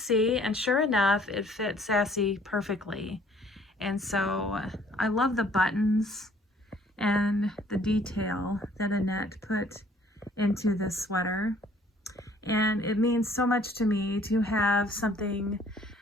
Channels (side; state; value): both; normal; correlation 0.59